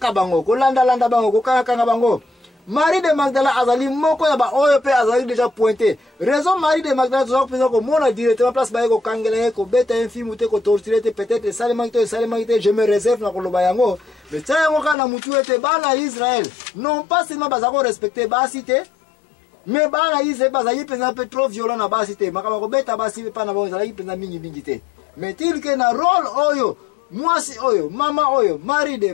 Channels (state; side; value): drops out; right; at 15.0 s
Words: bango ko landa bango ko kanga bango Marie de Magdala azali moko ya ba oyo pe azali déjà pointé raison Marie de Magdala zo ko ko mona directement place ba ko kangela ko beta infime te ko torturer te peut-être salement je me réserve na ko loba yango mais ça ngo kana mutu ete bana Israël non pas seulement bazako respecter basité mais bana Israël bazali penza peu trop violent na basité makama ko beta basi pa na bo zali penza mingi te mais til que na rôle oyo mwasi oyo mama oyo Marie de